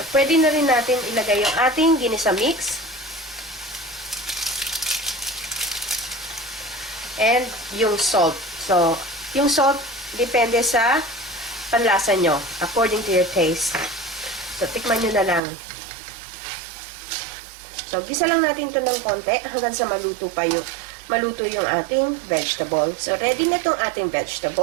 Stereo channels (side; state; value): left; drops out; at 15.4 s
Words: pwede na rin natin ilagay yung ating ginisa mix. And yung salt. So, yung salt, depende sa panlasa nyo, according to your taste. So, tikman nyo na lang. So, gisa lang natin ito ng konti hanggang sa maluto yung ating vegetable. So, ready na itong ating